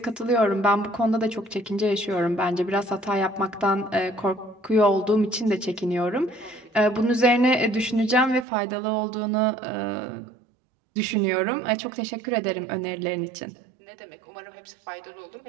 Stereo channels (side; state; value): left; drops out; at 8.5 s